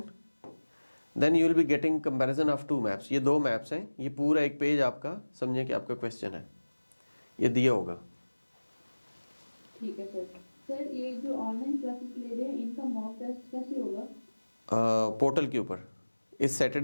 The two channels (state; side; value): inverted; both; correlation -1.00